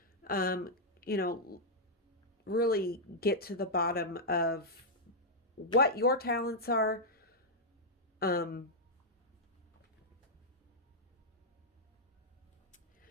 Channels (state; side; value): normal; both; correlation -0.06